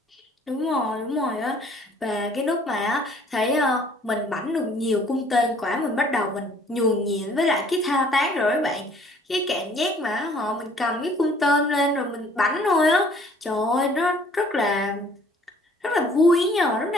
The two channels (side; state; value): both; normal; correlation 0.57